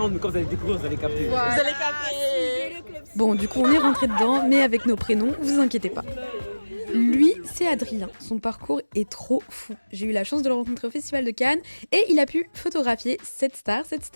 mais quand vous allez découvrir, vous allez capter. Vous allez capter. Bon, du coup, on est rentré dedans, mais avec nos prénoms, vous inquiétez pas. Lui, c'est Adrien. Son parcours est trop fou. J'ai eu la chance de le rencontrer au Festival de Cannes et il a pu photographier cette star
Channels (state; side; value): inverted; both; correlation -1.00